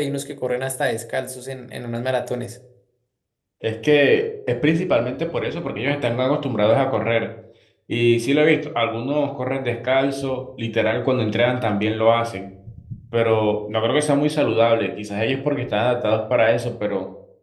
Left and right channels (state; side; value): identical; both; correlation 1.00